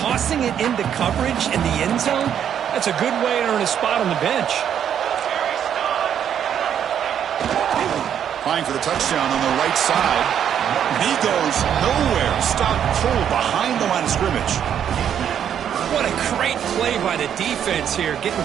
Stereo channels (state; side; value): quieter; left; 9.1 dB